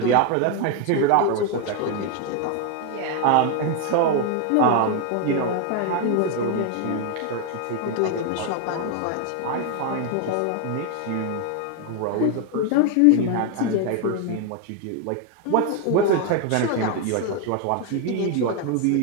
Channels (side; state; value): both; different; correlation 0.01